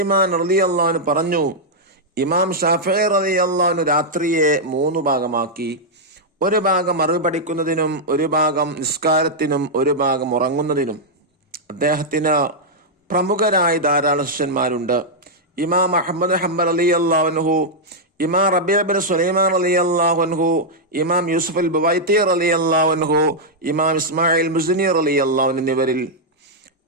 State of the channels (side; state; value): both; normal; correlation -0.05